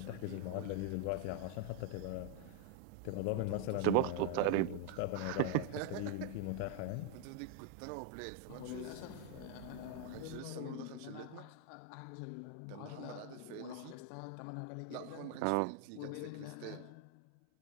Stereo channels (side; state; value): both; different; correlation 0.00